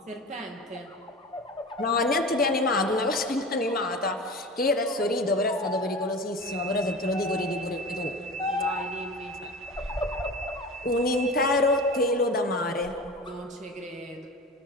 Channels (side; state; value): both; normal; correlation 0.33